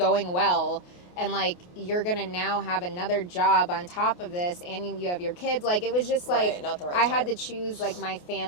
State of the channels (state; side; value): late; right; 28 ms